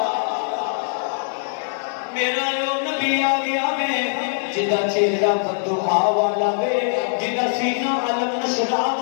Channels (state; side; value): silent; right; 64 dB below the other